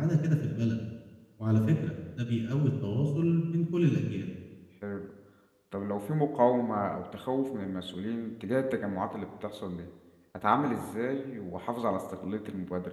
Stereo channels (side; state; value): both; identical; correlation 1.00